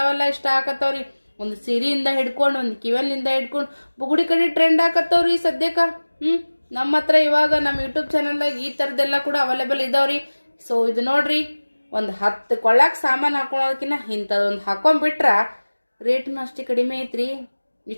ಇಷ್ಟ ಆಕತ್ತವ್ರಿ. ಒಂದು ಸೀರೆಯಿಂದ ಹಿಡ್ಕೊಂಡು ಒಂದು ಕಿವನ್ನಿಂದ ಹಿಡ್ಕೊಂಡು ಬುಗುಡಿ ಕಡೆ ಟ್ರೆಂಡ್ ಆಕತ್ತವ್ರಿ ಸದ್ಯಕ್ಕ. ನಮ್ಮ ಹತ್ರ ಇವಾಗ ನಮ್ಮ ಯೂಟ್ಯೂಬ್ ಚಾನಲ್ದಾಗ ಈ ಥರದ್ದೆಲ್ಲ ಕೂಡ ಅವೈಲೇಬಲ್ ಇದಾವ್ರಿ. ಸೊ ಇದು ನೋಡ್ರಿ, ಒಂದು 10 ಕೊಳ್ಳಾಕ ಸಾಮಾನು ಹಾಕೊಳೋದಕ್ಕಿಂತ ಇಂಥದೊಂದು ಹಾಕೊಂಡ್ಬಿಟ್ರ ರೇಟ್ನು ಅಷ್ಟೇ ಕಡಿಮೆ ಐತ್ರಿ.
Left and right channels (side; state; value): both; inverted; correlation -1.00